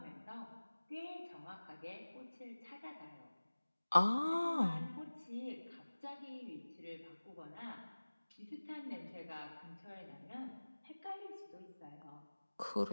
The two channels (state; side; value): inverted; both; correlation -1.00